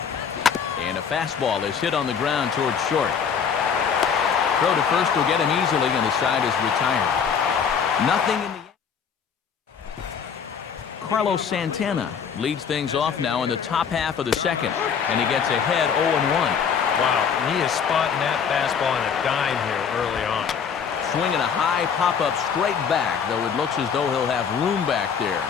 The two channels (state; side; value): quieter; right; 6.9 dB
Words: And a fastball is hit on the ground towards short. Throw to first will get him easily, and the side is retired. Nothing in the... Carlos Santana leads things off now in the top half of the second, and he gets ahead 0-1. Wow, he is spotting that fastball on a dime here early on. Swinging a high pop-up straight back, though it looks as though he'll have room back there.